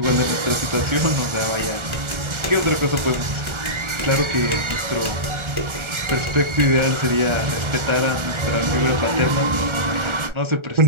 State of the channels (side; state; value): left; late; 1.4 ms